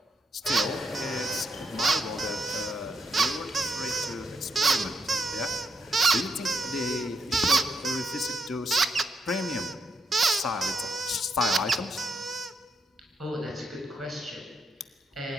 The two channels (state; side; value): normal; both; correlation 0.80